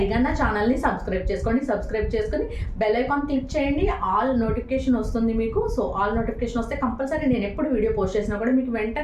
నా ఛానల్ని సబ్స్క్రైబ్ చేసుకోండి. సబ్స్క్రైబ్ చేసుకొని బెల్ ఐకాన్ క్లిక్ చేయండి. ఆల్ నోటిఫికేషన్ వస్తుంది మీకు. సో ఆల్ నోటిఫికేషన్ వస్తే కంపల్సరీ నేను ఎప్పుడు వీడియో పోస్ట్ చేసినా కూడా మీకు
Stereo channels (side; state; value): both; identical; correlation 1.00